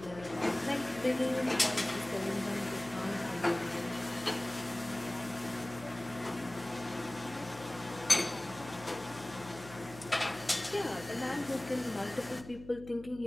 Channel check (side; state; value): left; noise; hum, 16 dB below the sound